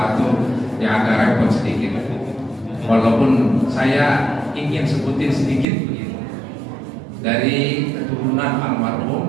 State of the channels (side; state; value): left; drops out; at 5.7 s